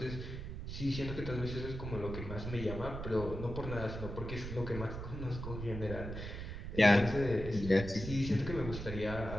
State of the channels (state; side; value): noise; right; rumble, 7 dB below the sound